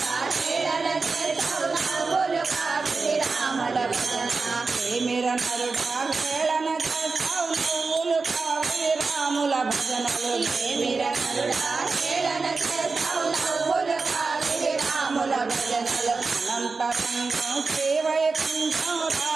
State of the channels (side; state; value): left; quieter; 4.2 dB